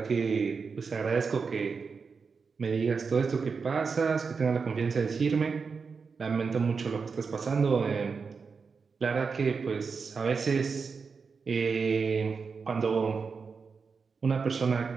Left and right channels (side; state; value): left; quieter; 5.2 dB